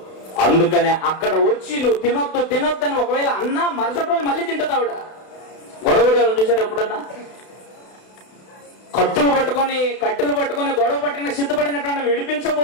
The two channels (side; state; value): right; late; 32 ms